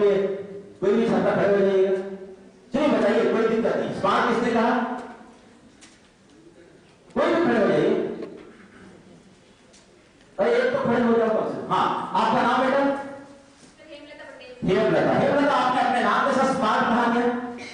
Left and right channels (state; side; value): identical; both; correlation 1.00